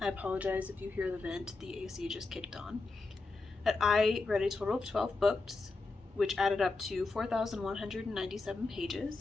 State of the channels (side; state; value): right; quieter; 3.6 dB